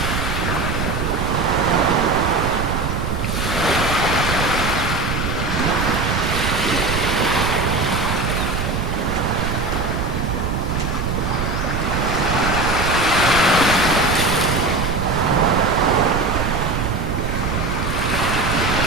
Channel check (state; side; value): noise; right; rumble, 2 dB below the sound